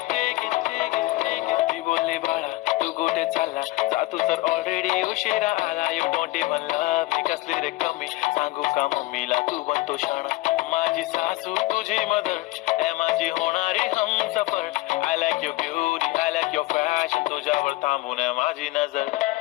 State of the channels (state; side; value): quieter; right; 19.7 dB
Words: ते घे ते घे ते घे. ती बोलली बाळा तू कुठे चालला जा तू तर ऑलरेडी उशिरा आला. You don't even love me. कसली रे कमी सांगू का मम्मीला तू बनतो शाणा. माझी सासू तुझी मदर माझी होणारी Humsafar. I like your beauty, I like your fashion. तुझ्यावर थांबून माझी नजर.